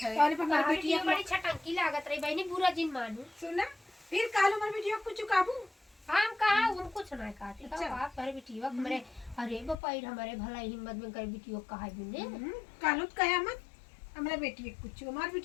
है। और पर हमारी बेटी बिटिया बड़ी छटंकी लागत रही बहनी बुरा जिन मानू सुना फिर कालो हमारी बिटिया कुछ काबू हम कहा उन कुछ ना काटे अच्छा। तो बाप करे बेटीवा हमरे अरे बपाई हमारे भला हिम्मत में करे बेटीवा कहा बिने कालो कयामत हमरा बेटी कुछ हमारी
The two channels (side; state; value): right; drops out; at 9.8 s